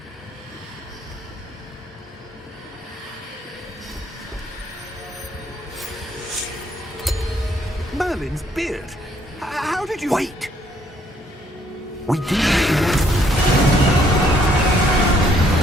Merlin's beard. How did you... Wait! We do...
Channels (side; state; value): both; normal; correlation 0.67